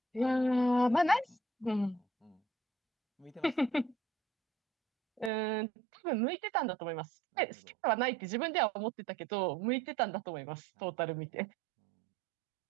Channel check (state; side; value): drops out; left; at 5.3 s